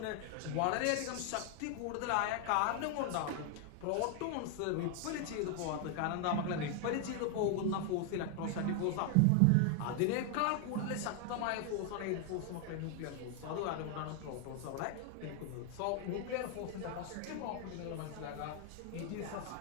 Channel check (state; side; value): different; both; correlation 0.00